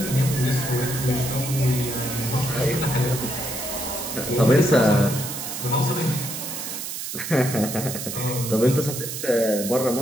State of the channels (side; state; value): right; noise; hiss, 6 dB below the sound